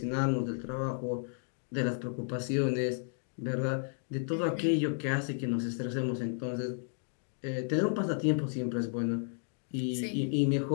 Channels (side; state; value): right; silent; digital silence